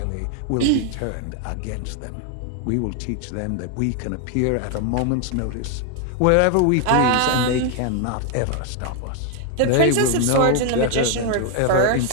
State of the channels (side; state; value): both; different; correlation 0.00